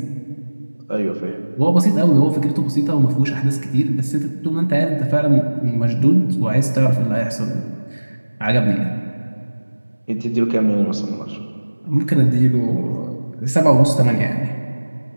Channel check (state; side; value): inverted; both; correlation -1.00